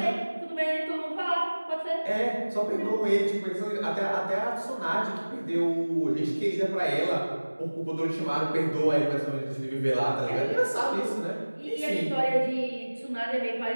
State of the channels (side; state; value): both; inverted; correlation -1.00